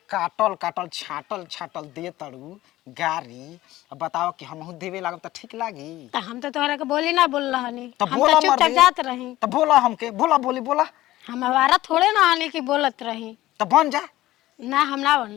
काटल काटल छाटल छाटल दे तड़ू गारी अब बताओ कि हमहू देवे लागब त ठीक लागी। तो हम तो तोहरा के बोली ना बोल रहनी तो हम बोला तो चुपचाप मर्दे जात रही। तो बोला हमके बोला बोली बोला हम हमारा थोड़े ना आने की बोलत रही। तो बन जा ना हम ना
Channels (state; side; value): quieter; right; 16.1 dB